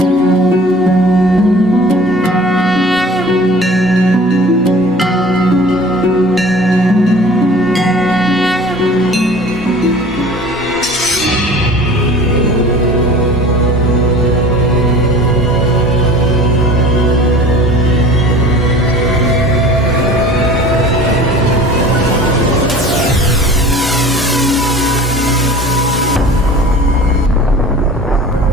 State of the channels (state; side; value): normal; both; correlation 0.43